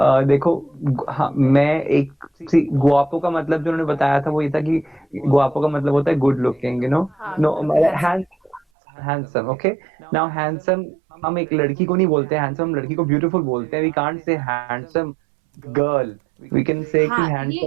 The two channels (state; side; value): drops out; left; at 8.6 s